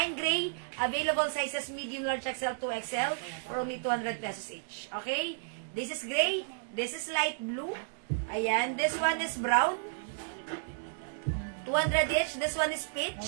gray, available sizes medium, large, XL, 2XL, for only 200 pesos each. Okay? This is gray, this is light blue. Ayan, this one is brown. 200 each, this one is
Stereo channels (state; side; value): silent; left; digital silence